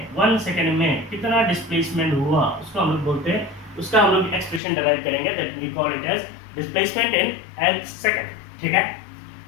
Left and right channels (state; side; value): drops out; right; at 4.6 s